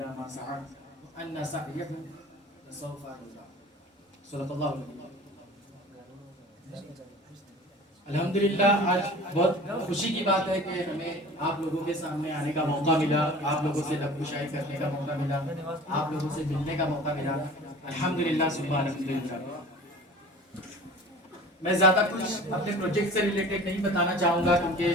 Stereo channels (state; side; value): normal; both; correlation 0.41